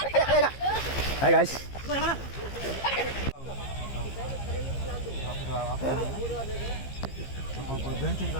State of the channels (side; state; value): right; late; 15 ms